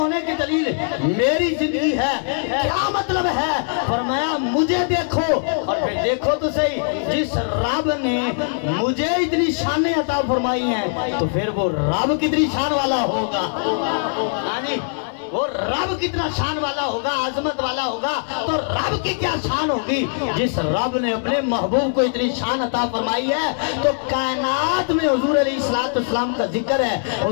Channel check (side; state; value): right; silent; 65 dB below the other